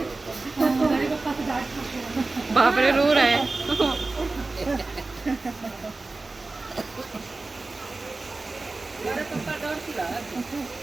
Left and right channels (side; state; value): left; quieter; 3.4 dB